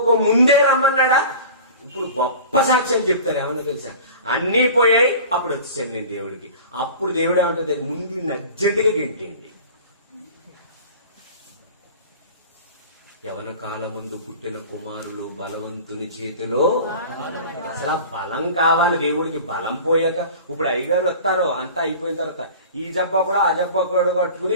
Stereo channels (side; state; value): both; inverted; correlation -0.39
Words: ముందే రమ్మన్నాడా? ఇప్పుడు గొప్ప సాక్ష్యం చెప్తారు. ఏమన్నా తెలుసా? అన్నీ పోయాయి, అప్పుడు వచ్చేసాను నేను దేవుడికి. అప్పుడు దేవుడు ఏమంటుంది? ముందు అర్జెంటుగా గింటేయండి. యవన కాలమందు పుట్టిన కుమారులు బలవంతుని చేతిలో. అసలు బలం కావాలి దేవుడికి. బలం పోయాక ఇప్పుడు అయ్యగారు వస్తారు, అంతా అయిపోయిన తర్వాత ఈ జబ్బా కూడా ఆ జబ్బా కూడా కట్టుకుని